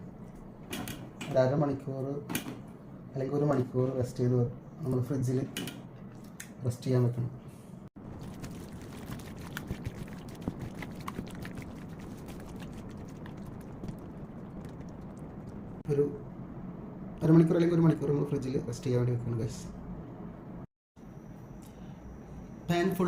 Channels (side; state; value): both; identical; correlation 1.00